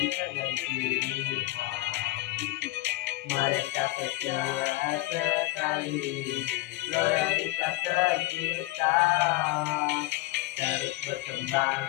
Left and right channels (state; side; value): quieter; right; 18.8 dB